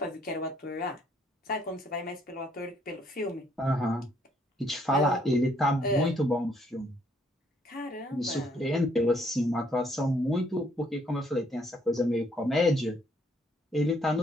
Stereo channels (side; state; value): both; normal; correlation 0.67